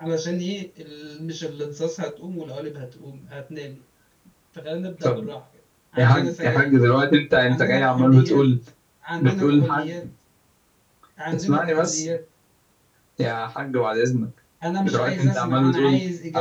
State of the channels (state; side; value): identical; both; correlation 1.00